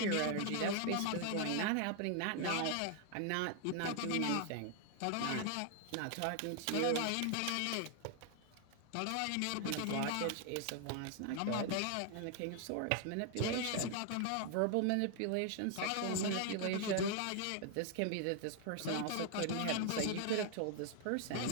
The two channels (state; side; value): different; both; correlation 0.00